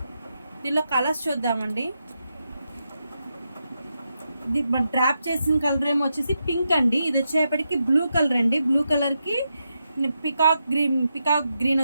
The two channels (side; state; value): both; inverted; correlation -0.85